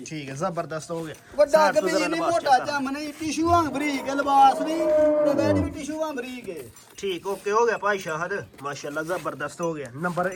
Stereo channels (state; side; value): identical; both; correlation 1.00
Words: ਠੀਕ ਹੈ ਜ਼ਬਰਦਸਤ ਹੋ ਗਿਆ ਵੱਡਾ ਸਾਈਡ ਤੋਂ ਕਿ ਜ਼ਰਾ ਨਹੀਂ ਲਿਬਾਸ ਮੋਟਾ check ਜੰਮ ਨਹੀਂ ਟਿਸ਼ੂ ਵਾਂਗ ਬਰੀਕ ਹੈ, ਲਿਬਾਸ ਵੀ ਤੇ ਬੈਡ ਵੀ ਟਿਸ਼ੂ ਵਾਂਗ ਬਰੀਕ ਹੈ ਠੀਕ ਓਕੇ ਹੋ ਗਿਆ ਭਾਈ ਸ਼ਾਹਦ ਮਾਸ਼ਾਅੱਲਾ ਜ਼ਬਰਦਸਤ ਹੋ ਗਿਆ ਨੰਬਰ